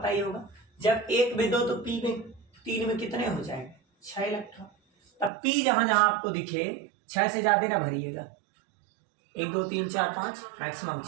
ही होगा, जब 1 में 2 तो पी में 3 में कितने हो जाएंगे 6 इलेक्ट्रॉन। तब पी जहां जहां आपको दिखे 6 से ज्यादा ना भरिएगा, 1 2 3 4 5 मैक्सिमम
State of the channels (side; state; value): left; drops out; at 5.3 s